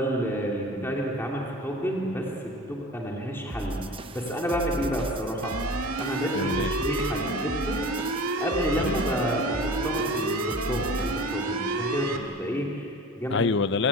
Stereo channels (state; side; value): normal; both; correlation 0.38